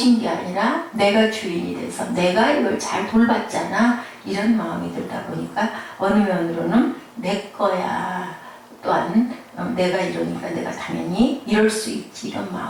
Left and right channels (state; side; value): identical; both; correlation 1.00